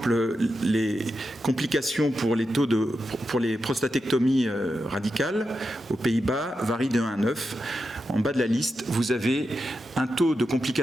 les complications pour les prostatectomies radicales aux Pays-Bas varient de 1 à 9. En bas de la liste, vous avez un taux de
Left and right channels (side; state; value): both; normal; correlation 0.88